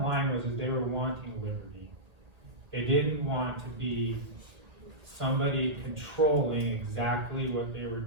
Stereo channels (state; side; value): late; left; 1.8 ms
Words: line was that they were wanting liberty. They didn't want to be somebody controlling exactly what they were